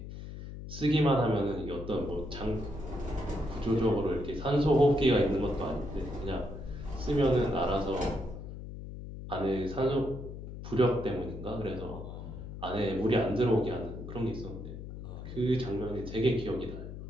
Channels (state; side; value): noise; left; hum, 10 dB below the sound